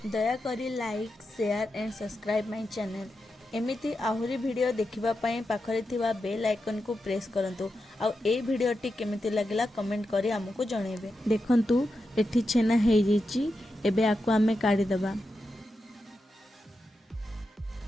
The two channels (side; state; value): both; normal; correlation 0.88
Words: दया करी like, share and subscribe my channel. एमिति आहुरी वीडियो देखिबा पई पाखरे थिबा बेल आइकन को प्रेस करंतु। आ ए वीडियोटी केमिति लागला कमेंट करी हमको जणेबे। देखंतु एठी छेना हे जैछि। एबे आकु आमे काढी दबा।